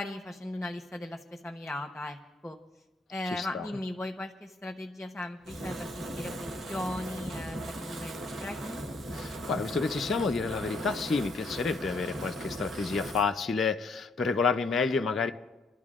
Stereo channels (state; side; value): quieter; right; 3.2 dB